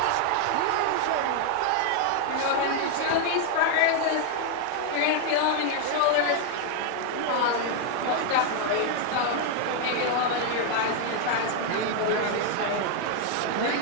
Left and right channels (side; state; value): both; different; correlation 0.00